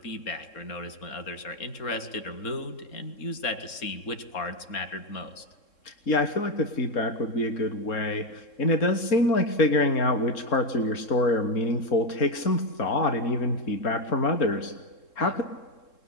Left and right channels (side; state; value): right; late; 3.7 ms